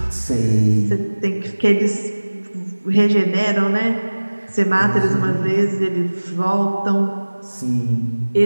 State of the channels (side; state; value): both; inverted; correlation -1.00